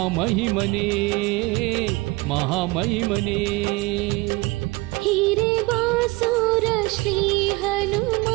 ಮಹಾಮಹಿಮನೇ ಹೀರೆ ಬಾಸೂರ ಶ್ರೀ ಹನುಮ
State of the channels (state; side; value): quieter; left; 22.8 dB